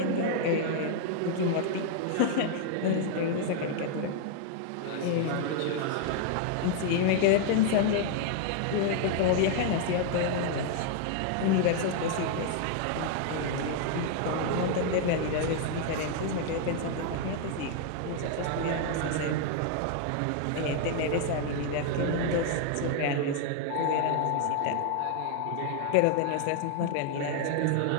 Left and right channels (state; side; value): different; both; correlation 0.00